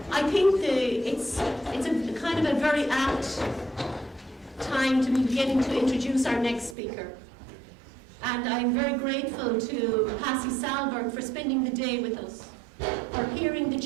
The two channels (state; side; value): drops out; left; at 6.8 s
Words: I think it's a kind of a very apt time to be beginning to introduce our next speaker. And I'm very grateful to Passy Sahlberg for spending the day with us, for hearing the